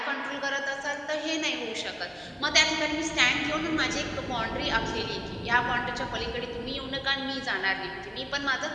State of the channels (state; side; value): identical; both; correlation 1.00